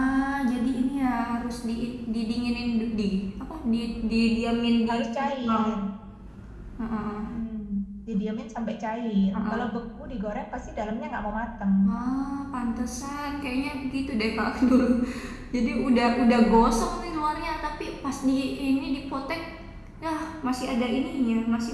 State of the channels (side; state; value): both; identical; correlation 1.00